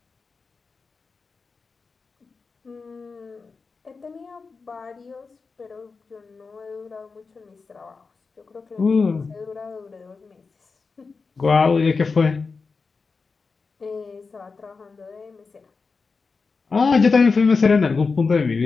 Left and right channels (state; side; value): quieter; right; 4.6 dB